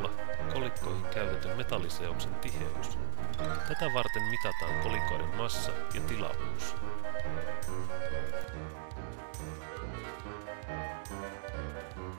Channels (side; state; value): left; silent; digital silence